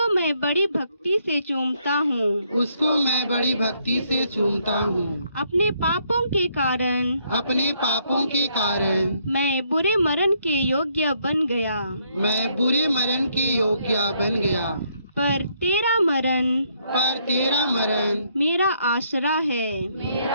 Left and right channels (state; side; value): inverted; both; correlation -0.71